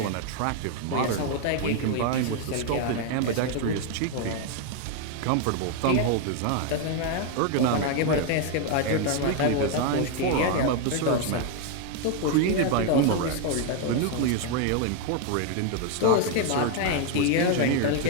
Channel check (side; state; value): both; different; correlation 0.01